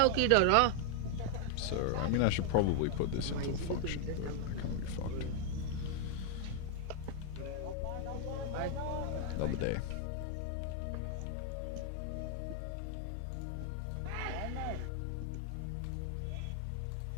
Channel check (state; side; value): different; both; correlation 0.00